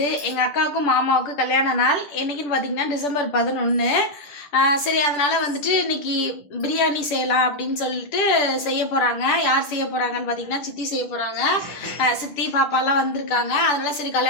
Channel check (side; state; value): right; late; 10 ms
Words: எங்கள் அக்காவுக்கும் மாமாவுக்கும் கல்யாண நாள். என்னைக்குன்னு பார்த்தீங்கன்னா டிசம்பர் 11. சரி, அதனால வந்துட்டு இன்னைக்கு பிரியாணி செய்யலாம் அப்படின்னு சொல்லிட்டு செய்ய போகிறாங்க. யார் செய்ய போகிறாங்கன்னு பார்த்தீங்கன்னா சித்தி செய்ய போகிறாங்க. சித்தி பாப்பாலாம் வந்திருக்காங்க. அதனால சரி